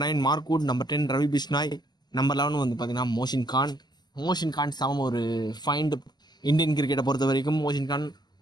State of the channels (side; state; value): right; late; 0.21 ms